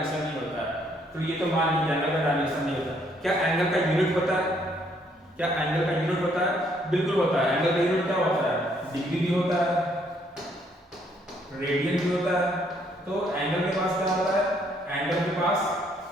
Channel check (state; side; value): normal; both; correlation 0.68